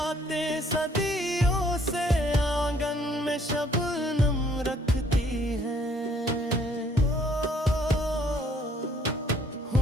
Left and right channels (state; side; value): normal; both; correlation 0.62